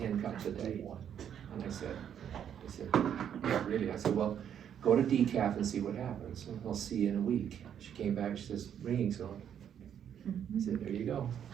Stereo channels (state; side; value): quieter; left; 9.0 dB